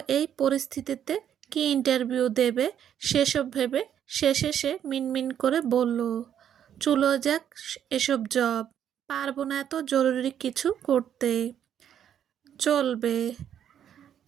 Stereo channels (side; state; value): left; quieter; 9.5 dB